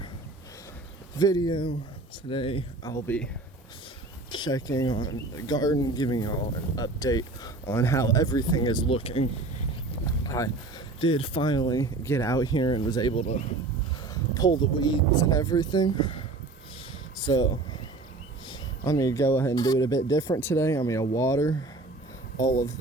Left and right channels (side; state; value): left; quieter; 3.2 dB